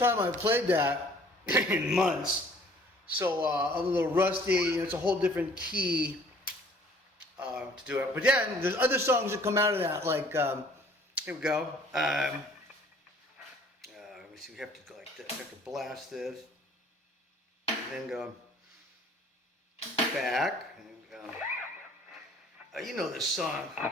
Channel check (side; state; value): both; normal; correlation 0.55